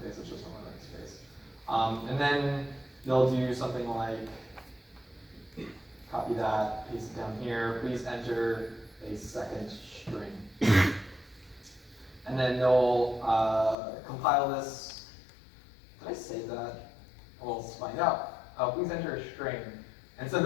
face, it's just a smiley face. And then they'll do something like, copy that, paste it down here, please enter a second string. And then they'll compile this. Did I save that? Well, let's find out. Please enter a string. And so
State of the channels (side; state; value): right; drops out; at 13.8 s